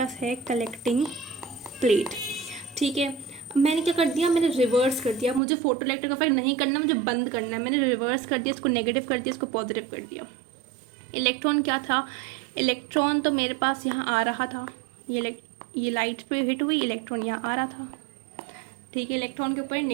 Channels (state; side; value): drops out; left; at 5.4 s